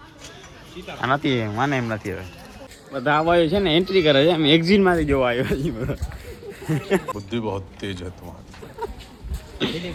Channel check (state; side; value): identical; both; correlation 1.00